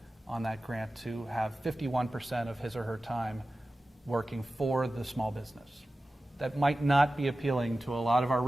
on that grant to have 51% of his or her time working for the small business. That might not be appealing to a lot of our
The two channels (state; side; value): normal; both; correlation 0.95